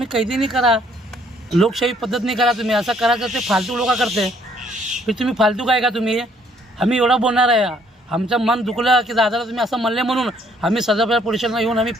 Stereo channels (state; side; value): normal; both; correlation 0.64